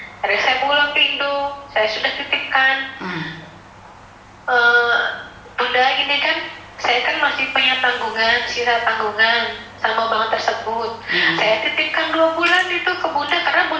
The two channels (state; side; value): identical; both; correlation 1.00